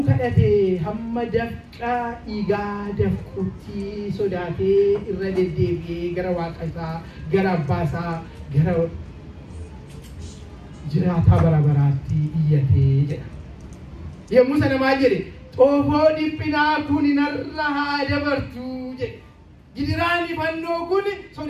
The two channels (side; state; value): both; identical; correlation 1.00